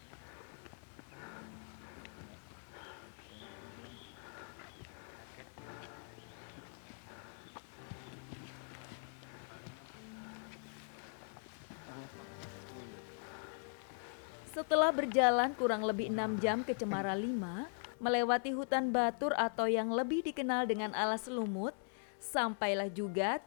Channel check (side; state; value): right; silent; 51 dB below the other